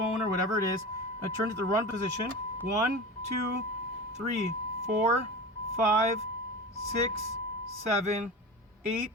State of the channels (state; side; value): normal; both; correlation 0.30